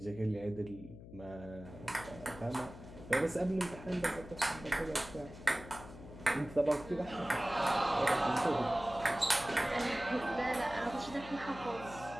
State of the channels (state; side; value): noise; left; hum, 15 dB below the sound